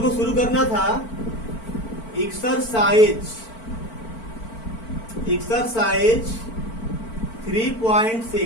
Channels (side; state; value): right; late; 4.5 ms